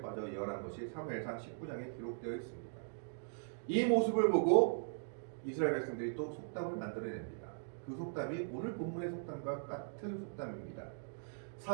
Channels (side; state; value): left; silent; digital silence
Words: 예언한 것이 사무엘상 19장에 기록되어 있습니다. 이 모습을 보고 이스라엘 백성들이 또 속담을 만들어냅니다. 그 속담이 오늘 본문의 속담과 같은 속담입니다.